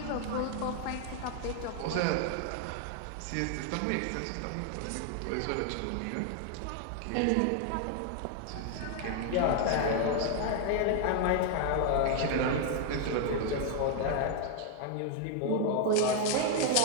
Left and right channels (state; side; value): different; both; correlation 0.00